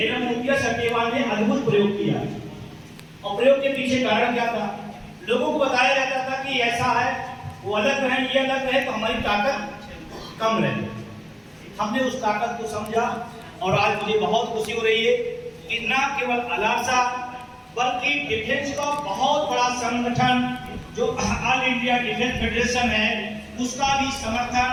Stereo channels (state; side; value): identical; both; correlation 1.00